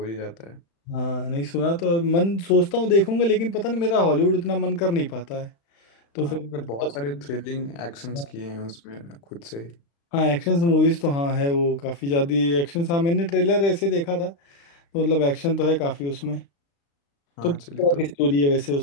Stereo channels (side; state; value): right; late; 35 ms